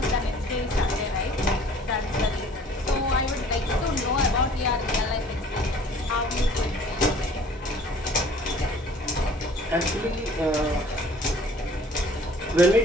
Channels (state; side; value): normal; both; correlation 0.52